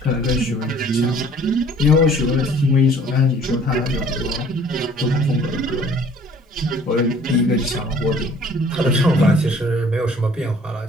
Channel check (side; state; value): both; normal; correlation 0.54